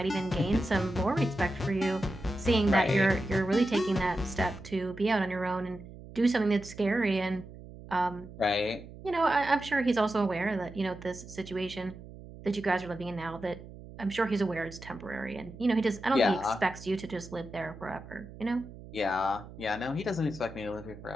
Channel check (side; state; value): right; noise; hum, 16 dB below the sound